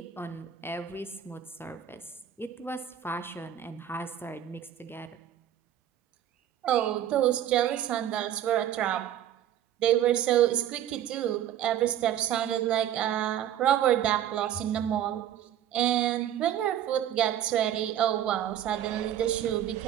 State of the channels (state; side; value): quieter; left; 10.9 dB